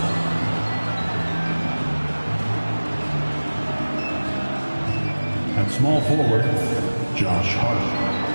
At small forward, Josh Hart.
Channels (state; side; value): inverted; both; correlation -1.00